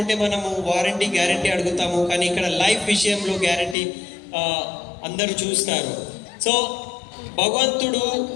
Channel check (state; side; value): drops out; right; at 3.8 s